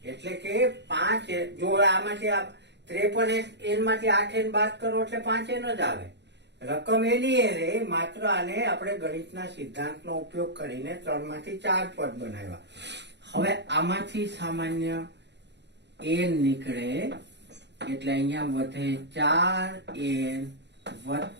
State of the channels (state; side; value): late; left; 0.50 ms